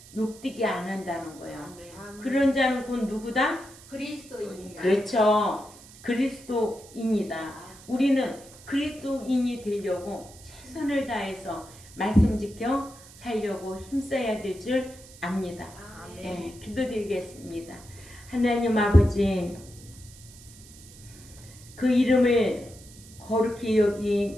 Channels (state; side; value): noise; right; hiss, 21 dB below the sound